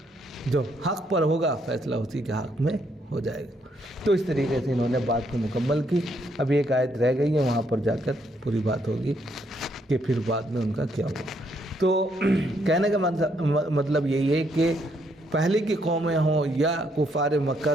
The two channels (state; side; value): normal; both; correlation 0.73